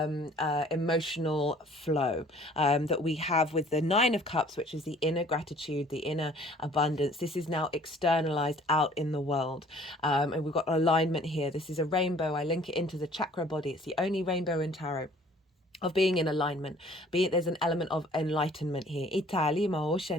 flow that we have with the 9 of Cups, which is the inner gratitude, the inner abundance. This is now externalized out in the world. And we've got alignment here. This is a rainbow. I link it into the chakra body. It's the only rainbow in tarot. of being in alignment, be it there's an element of enlightenment here.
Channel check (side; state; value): both; normal; correlation 0.54